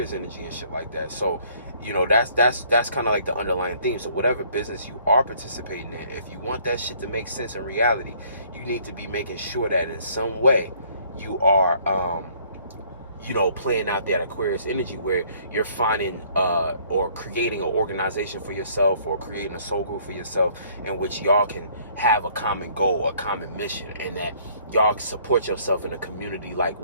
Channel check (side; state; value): both; inverted; correlation -0.61